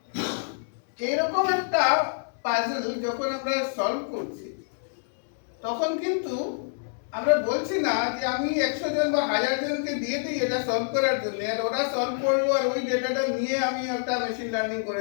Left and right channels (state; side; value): silent; right; 60 dB below the other